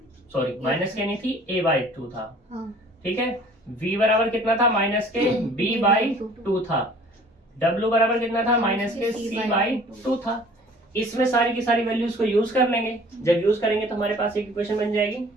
सॉरी माइनस के नहीं थी, a/2 था, ठीक है। v बराबर कितना था माइनस के b बाई 2 था, w बराबर कितना था माइनस के c बाई 2 था। इसमें सारी की सारी वैल्यूज को यूज कर लेंगे, जब यूज करेंगे तो हमारे पास एक इक्वेशन बन जाएगी।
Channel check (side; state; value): both; normal; correlation 0.51